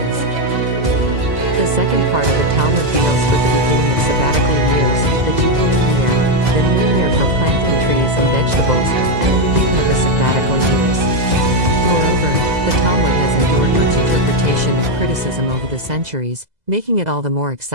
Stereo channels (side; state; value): left; late; 2.0 ms